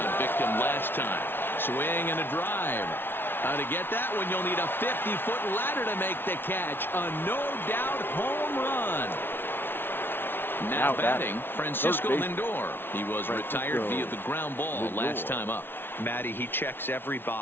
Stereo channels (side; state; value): right; late; 0.11 ms